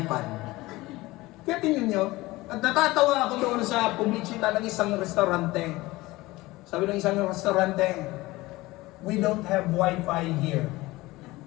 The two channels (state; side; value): quieter; right; 19.8 dB